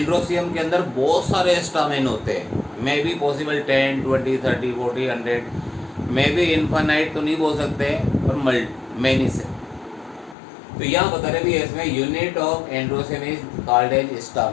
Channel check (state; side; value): drops out; right; at 10.4 s